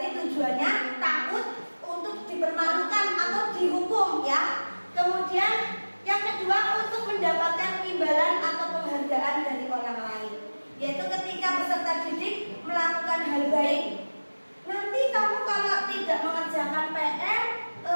tujuannya takut untuk dipermalukan atau dihukum ya. Kemudian yang kedua untuk mendapatkan imbalan atau penghargaan dari orang lain, yaitu ketika peserta didik melakukan hal baik. Nanti kamu kalau tidak mengerjakan PR,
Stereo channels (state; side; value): inverted; both; correlation -1.00